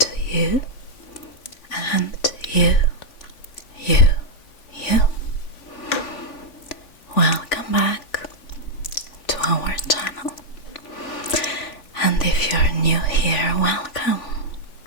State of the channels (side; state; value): right; late; 3.5 ms